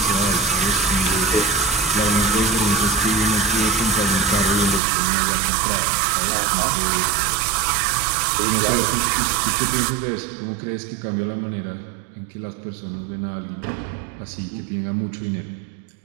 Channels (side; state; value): left; drops out; at 4.8 s